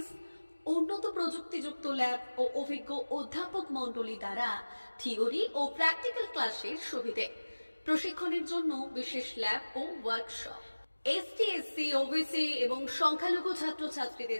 উন্নত প্রযুক্তিযুক্ত ল্যাব ও অভিজ্ঞ অধ্যাপক মণ্ডলী দ্বারা থিওরি ও প্র্যাকটিক্যাল ক্লাসের সুবিধে, প্রশিক্ষণের জন্য বিশেষ ল্যাব ও ওয়ার্কশপ, ST, SC, OBC এবং সংখ্যালঘু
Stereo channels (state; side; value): inverted; both; correlation -1.00